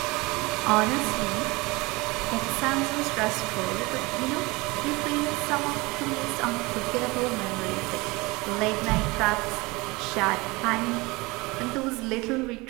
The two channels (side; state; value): left; quieter; 23.9 dB